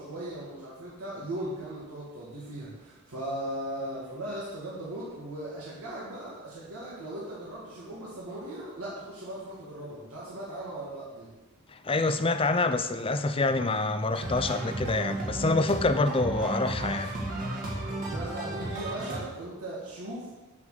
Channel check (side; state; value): both; normal; correlation 0.33